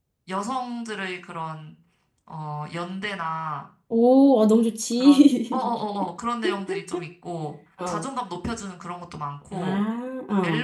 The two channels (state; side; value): identical; both; correlation 1.00